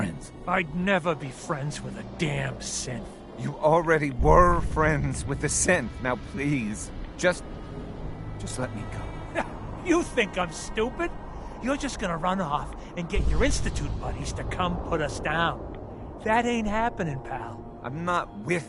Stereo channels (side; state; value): both; identical; correlation 1.00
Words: I'd never be friends with a damn synth. You already were friends with the synth. Now please, just let me go. You think I'm stupid? You're just gonna run off and get your Institute buddies to come put us down. That ain't happening, pal. I'm not